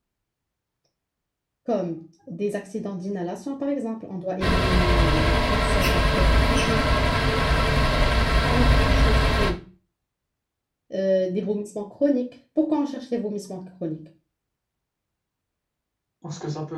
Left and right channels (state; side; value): identical; both; correlation 1.00